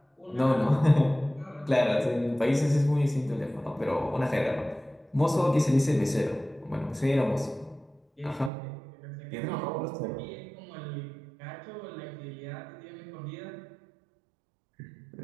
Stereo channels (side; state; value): left; drops out; at 8.5 s